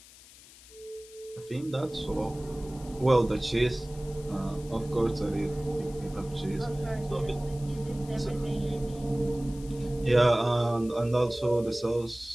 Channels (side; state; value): left; noise; hiss, 21 dB below the sound